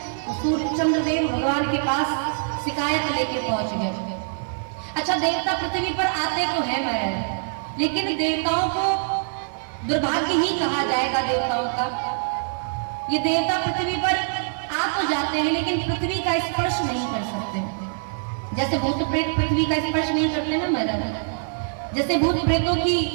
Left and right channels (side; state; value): left; silent; digital silence